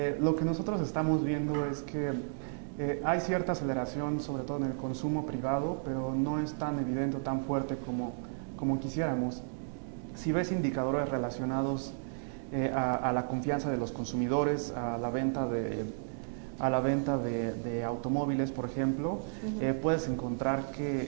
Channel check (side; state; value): left; silent; digital silence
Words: Lo que nosotros estamos viendo es que hay cierta aceleración, sobre todo en el consumo privado, pero no es tan evidente o tan fuerte como quisiéramos. Si ves indicadores relacionados a la confianza de los consumidores, a la venta a la venta de automóviles, por ejemplo, puedes encontrar